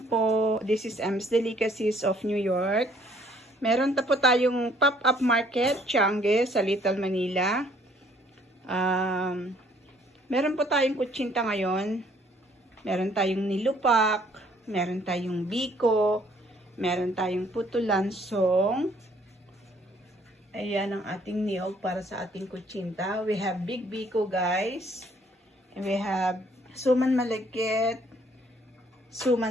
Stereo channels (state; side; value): normal; both; correlation 0.62